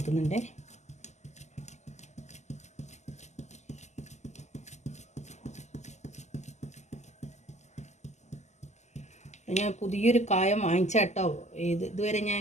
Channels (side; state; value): right; late; 0.33 ms